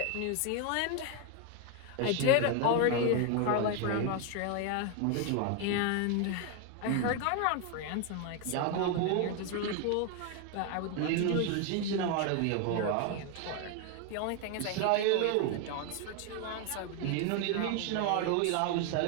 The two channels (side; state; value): both; different; correlation 0.01